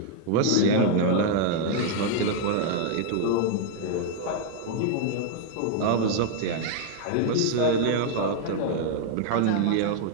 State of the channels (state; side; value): different; both; correlation 0.00